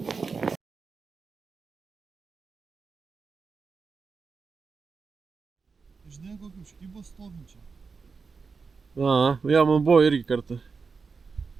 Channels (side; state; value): left; quieter; 4.9 dB